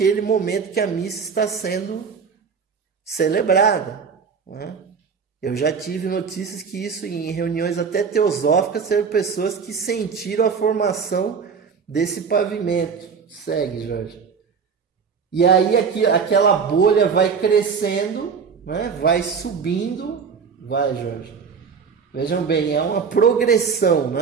momento que a missa está sendo celebrada, né? Eu já tive notícias que isso em reuniões até teosóficas, eram pessoas que sentiram a formação desse pavimento. Segue, Jorge. E aí aquela bolha vai crescendo, né? Vai subindo, Jorge. Vejam bem, é uma progressão,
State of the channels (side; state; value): left; quieter; 6.0 dB